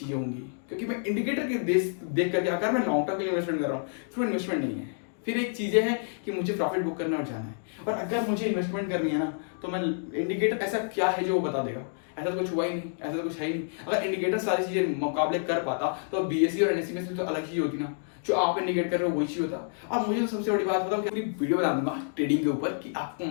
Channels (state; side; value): silent; right; digital silence